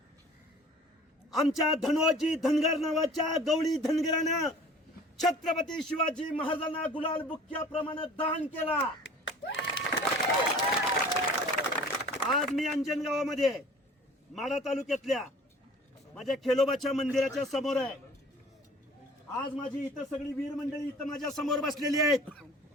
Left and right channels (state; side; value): normal; both; correlation 0.47